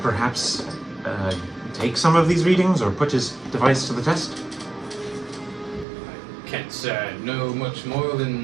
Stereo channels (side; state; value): left; drops out; at 5.9 s